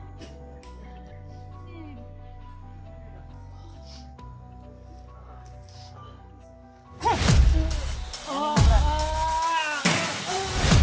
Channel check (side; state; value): both; identical; correlation 1.00